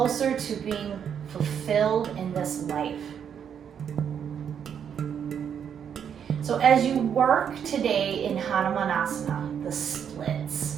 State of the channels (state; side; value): quieter; left; 8.1 dB